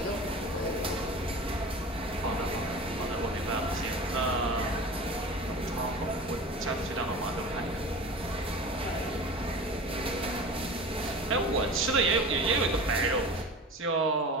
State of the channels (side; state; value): both; normal; correlation 0.35